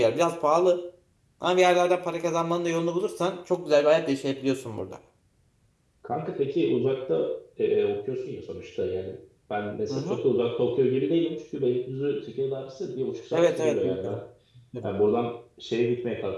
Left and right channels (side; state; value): both; identical; correlation 1.00